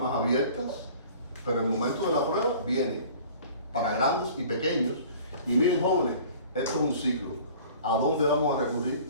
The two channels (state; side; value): inverted; both; correlation -0.47